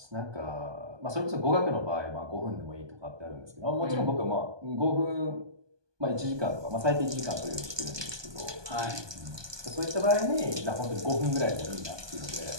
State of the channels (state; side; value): late; left; 1.2 ms